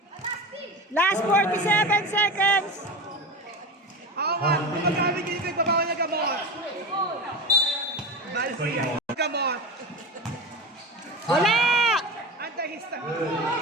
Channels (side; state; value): both; normal; correlation 0.26